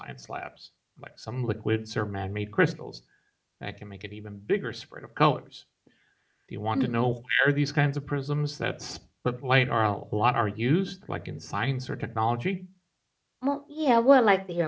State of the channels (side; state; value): both; identical; correlation 1.00